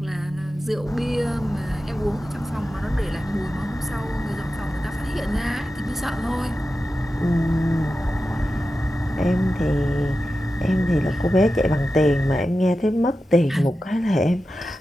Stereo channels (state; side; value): normal; both; correlation 0.92